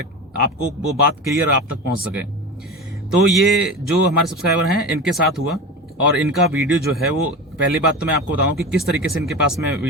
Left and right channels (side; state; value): both; normal; correlation 0.28